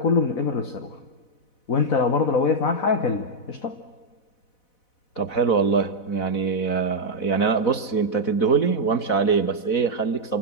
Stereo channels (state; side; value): late; right; 4.1 ms